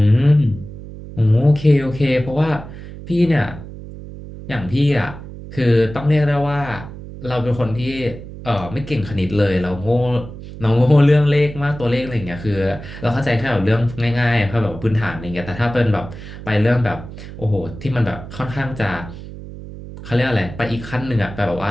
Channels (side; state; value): right; noise; hum, 13 dB below the sound